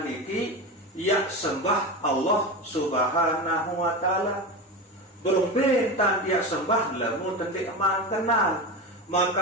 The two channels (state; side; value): normal; both; correlation 0.23